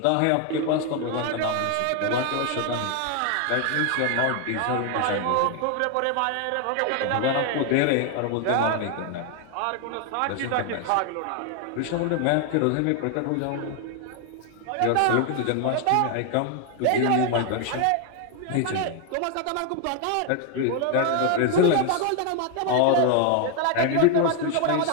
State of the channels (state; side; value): different; both; correlation 0.00